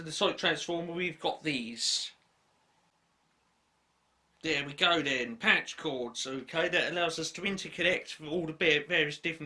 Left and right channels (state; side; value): identical; both; correlation 1.00